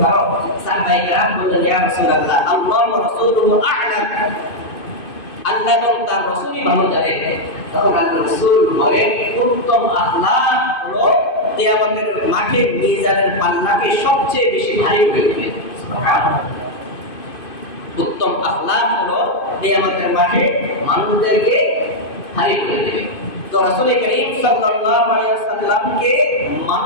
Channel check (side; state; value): right; late; 2.5 ms